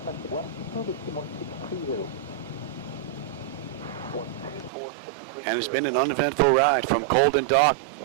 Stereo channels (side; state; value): left; drops out; at 4.7 s